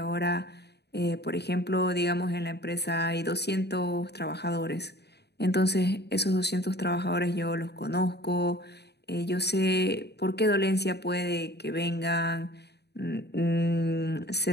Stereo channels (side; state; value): right; late; 0.48 ms